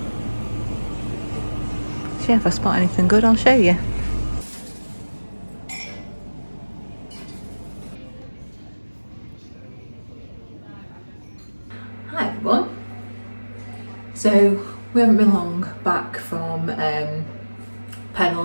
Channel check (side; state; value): both; inverted; correlation -1.00